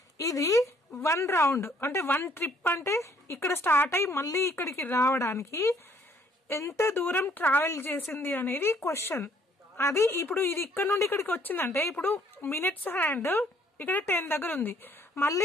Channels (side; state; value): both; normal; correlation 0.64